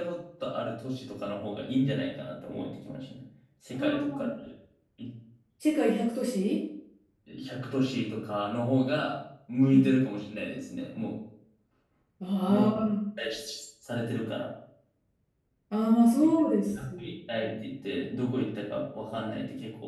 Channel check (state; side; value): identical; both; correlation 1.00